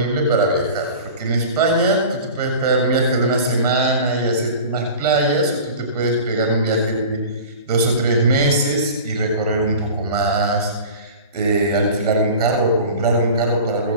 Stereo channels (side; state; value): both; inverted; correlation -0.38